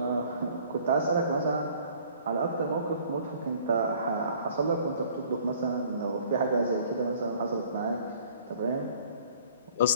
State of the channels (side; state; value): both; inverted; correlation -0.55